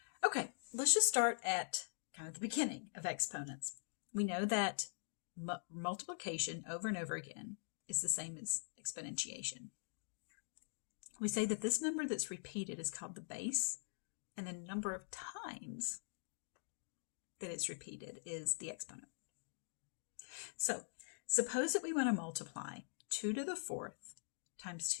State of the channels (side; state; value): right; silent; digital silence